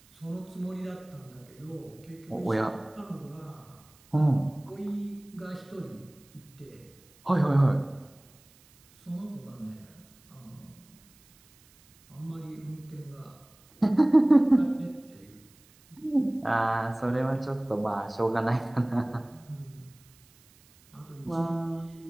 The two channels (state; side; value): noise; right; hiss, 28 dB below the sound